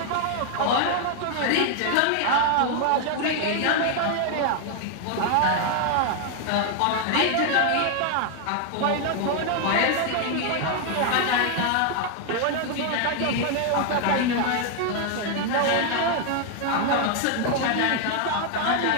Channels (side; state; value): both; different; correlation 0.00